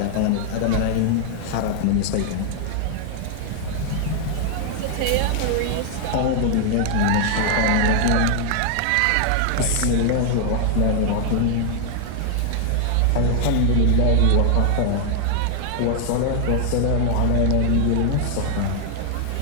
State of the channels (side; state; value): both; different; correlation 0.00